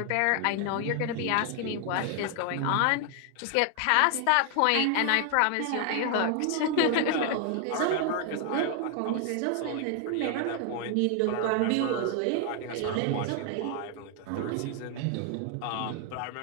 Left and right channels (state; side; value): different; both; correlation 0.00